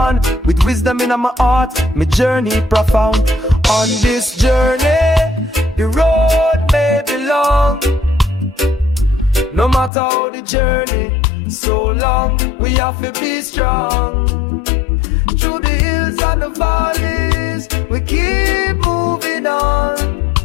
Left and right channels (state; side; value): drops out; right; at 9.9 s